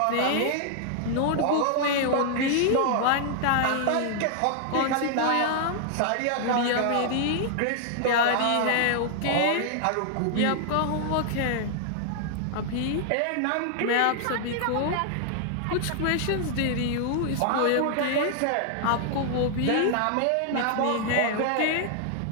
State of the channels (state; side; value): different; both; correlation 0.00